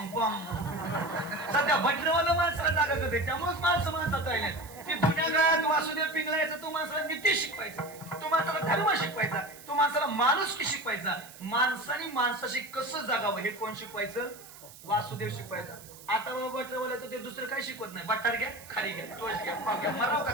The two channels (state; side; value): noise; right; hiss, 18 dB below the sound